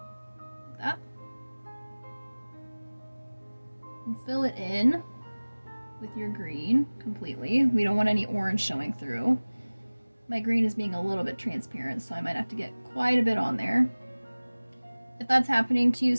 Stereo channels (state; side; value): inverted; both; correlation -1.00